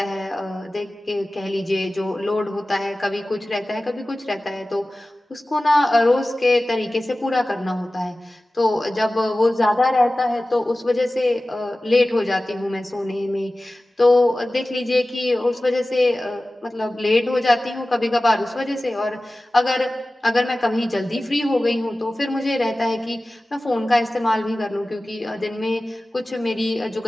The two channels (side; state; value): both; normal; correlation 0.97